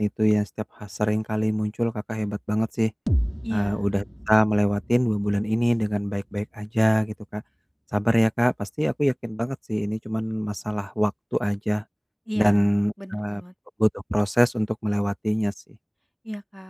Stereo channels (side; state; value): both; identical; correlation 1.00